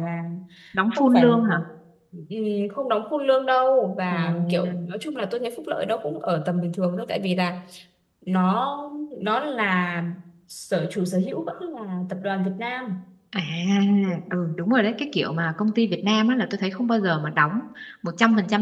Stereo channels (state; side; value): identical; both; correlation 1.00